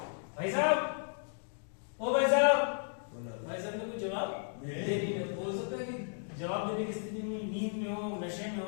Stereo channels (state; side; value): silent; right; digital silence